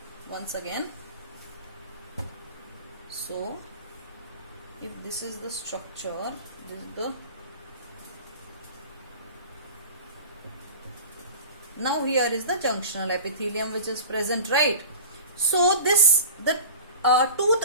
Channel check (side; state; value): both; inverted; correlation -0.37